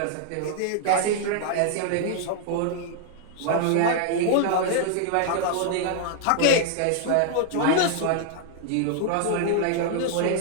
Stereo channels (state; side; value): different; both; correlation 0.00